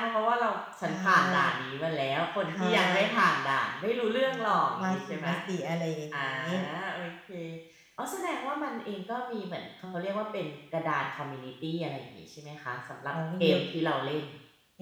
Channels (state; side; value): identical; both; correlation 1.00